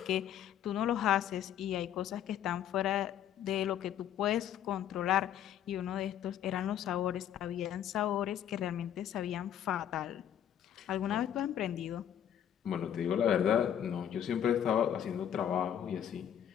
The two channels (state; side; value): quieter; right; 10.1 dB